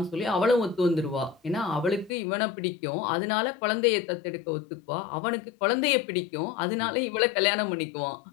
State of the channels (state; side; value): drops out; right; at 2.1 s